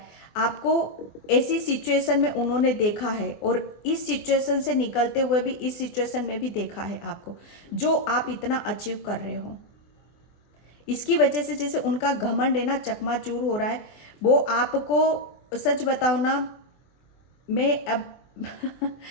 आपको ऐसी सिचुएशन में उन्होंने देखा है, और इस सिचुएशन से निकलते हुए भी इस सिचुएशन में भी देखा है आपको, जो आप इतना अचीव कर रहे हो। इसकी वजह से जैसे उनका घमंड है ना चकनाचूर हो रहा है। वो आपको, सच बताओ ना, मैं अब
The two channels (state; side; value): late; right; 24 ms